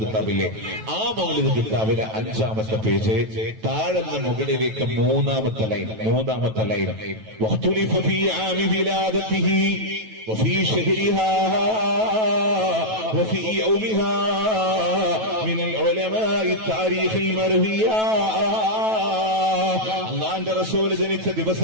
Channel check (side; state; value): left; late; 9.2 ms